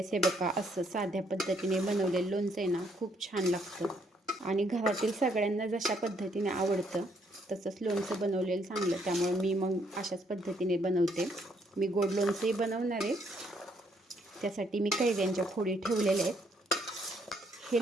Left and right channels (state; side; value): normal; both; correlation 0.70